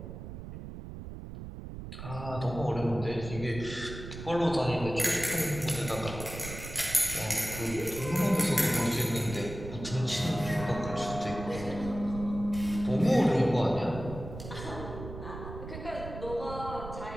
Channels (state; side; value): noise; right; rumble, 10 dB below the sound